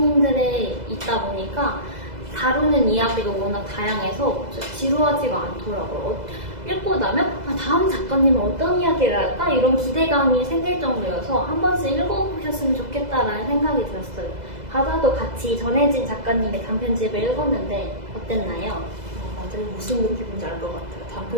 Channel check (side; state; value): left; late; 2.0 ms